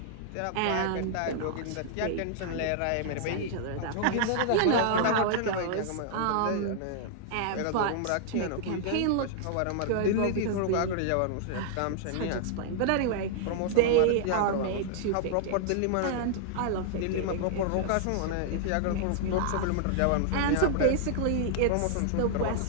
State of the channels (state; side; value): different; both; correlation -0.01